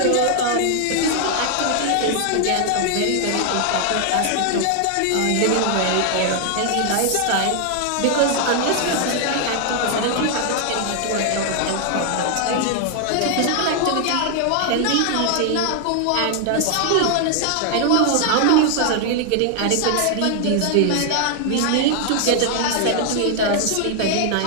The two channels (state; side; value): different; both; correlation 0.00